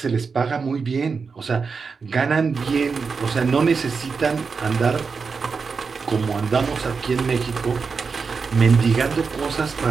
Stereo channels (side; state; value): left; quieter; 5.1 dB